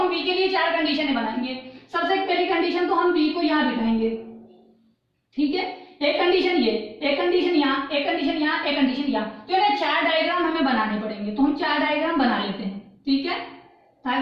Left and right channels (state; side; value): identical; both; correlation 1.00